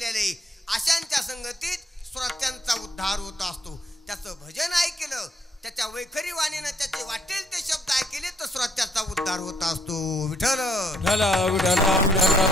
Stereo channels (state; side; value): normal; both; correlation 0.68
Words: अशांच्या संगतीत श्रोत्यांचा उद्धार होत असतो. त्याचं भजन ऐकलं, त्याच्या वैखरी वाणीनं त्याचे वाटेल ते शब्द ऐकले तर श्रोत्याचा उद्धार होत असतो. विठ्ठल